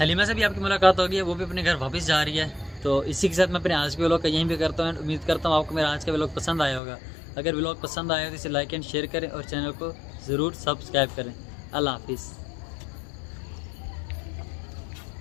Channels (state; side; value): drops out; right; at 6.8 s